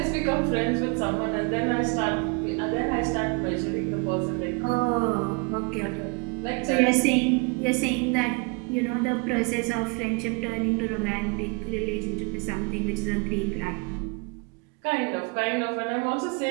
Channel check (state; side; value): quieter; left; 31.3 dB